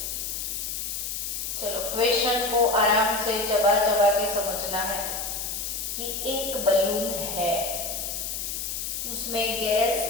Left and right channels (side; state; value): left; noise; hiss, 4 dB below the sound